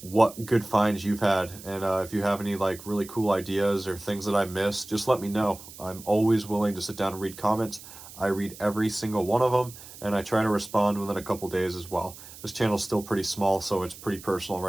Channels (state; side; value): noise; right; hiss, 17 dB below the sound